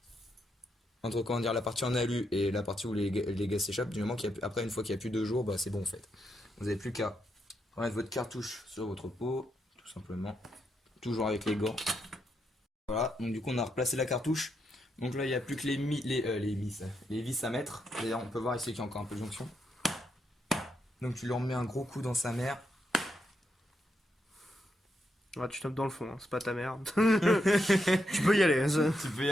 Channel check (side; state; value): both; normal; correlation 0.81